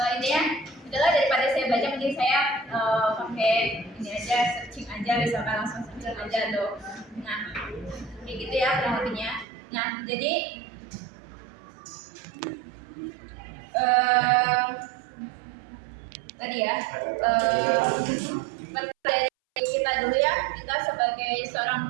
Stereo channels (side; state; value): left; drops out; at 9.5 s